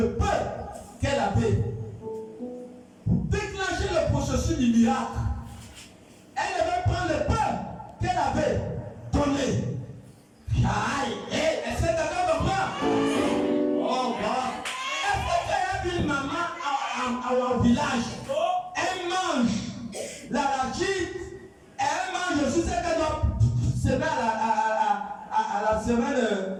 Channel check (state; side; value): identical; both; correlation 1.00